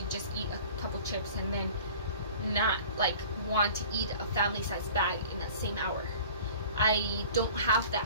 just eat a couple chips and then not like want to eat a family-sized bag in that same hour. I don't have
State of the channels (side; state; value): both; inverted; correlation -0.44